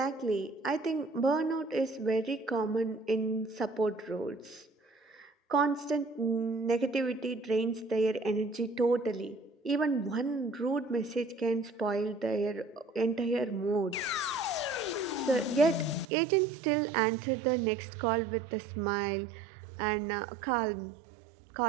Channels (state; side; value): drops out; left; at 16.1 s